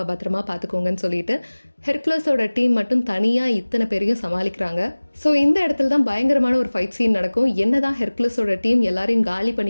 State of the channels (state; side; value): inverted; both; correlation -1.00